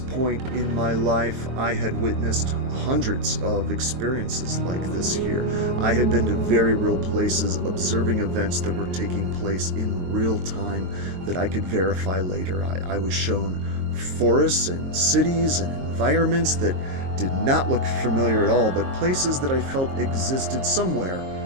in my life, I had witnessed hundreds of experiences like this here. I had been to very real places, observing events that were taking place in real time that I could verify later. I was shown forests and cities and environments that did not look familiar at all, but places that I felt existed somewhere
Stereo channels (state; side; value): late; left; 22 ms